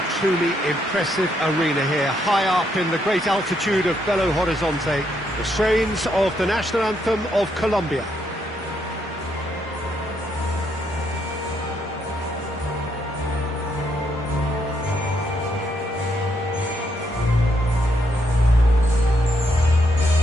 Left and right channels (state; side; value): normal; both; correlation 0.76